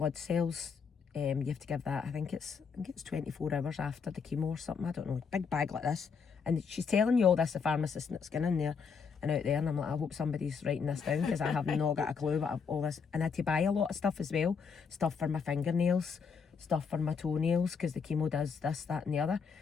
cells. You have to give that, I think it's 24 hours after the chemo or something, I don't know, big bag like this. And she's telling you all this, the pharmacist that's going in there and out there, and I'm like, I hope somebody's writing this down, because I have not got a clue about all this. And I had to buy a lot of stuff as well, stuff for my fingernails, stuff for my toenails, because the chemo does this, that and the other.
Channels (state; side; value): quieter; right; 5.9 dB